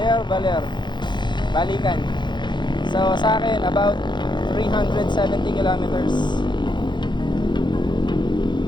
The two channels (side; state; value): right; late; 0.22 ms